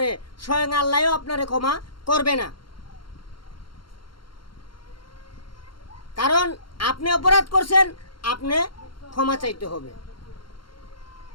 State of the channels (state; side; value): late; right; 0.73 ms